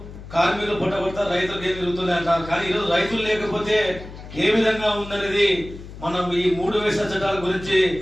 పొట్ట కొడతారు, రైతులకు ఏం జరుగుతుంది అంటారు. కానీ ఈరోజు రైతులు లేకపోతే ఏ విధంగా ఉందనేది మనం ఈ 3 వేస చట్టాల గురించి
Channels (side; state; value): left; noise; hum, 14 dB below the sound